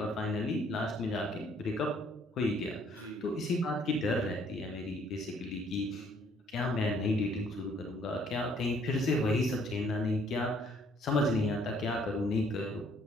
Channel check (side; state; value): both; normal; correlation 0.63